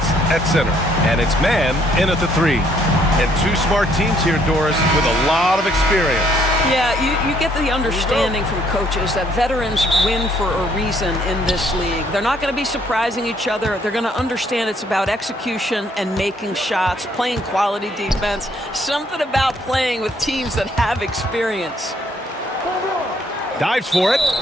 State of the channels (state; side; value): normal; both; correlation 0.66